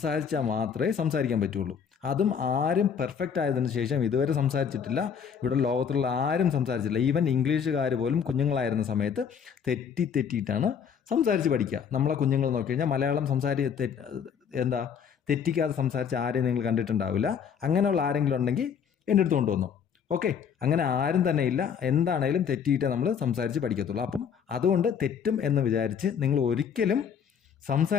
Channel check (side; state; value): right; quieter; 7.3 dB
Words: മാത്രമേ സംസാരിക്കാൻ പറ്റുള്ളൂ. അതും ആരും പെർഫെക്റ്റ് ആയതിനു ശേഷം ഇതുവരെ സംസാരിച്ചിട്ടില്ല. ഇവിടെ ലോകത്തുള്ള ആരും സംസാരിച്ചില്ല. ഈവൻ ഇംഗ്ലീഷുകാർ പോലും കുഞ്ഞുങ്ങളായിരുന്ന സമയത്ത് തെറ്റിയിട്ടാണ് സംസാരിച്ച് പഠിക്കുക. നമ്മളെ കുഞ്ഞുങ്ങൾ നോക്കി കഴിഞ്ഞാൽ മലയാളം തെറ്റിക്കാതെ സംസാരിച്ച് ആരെയും നിങ്ങൾ കണ്ടിട്ടുണ്ടാവില്ല. അങ്ങനെയുള്ള ആരെങ്കിലും ഉണ്ടെങ്കിൽ എൻ്റെ അടുത്ത് കൊണ്ടുവന്നു. ഓക്കെ, അങ്ങനെ ആരും തന്നെ ഇല്ല. എന്താണേലും തെറ്റിയിട്ടേ നമ്മൾ സംസാരിച്ച് പഠിക്കത്തുള്ളൂ. അപ്പം അതുകൊണ്ട് തെറ്റും എന്ന് വിചാരിച്ച് നിങ്ങൾ ഒരിക്കലും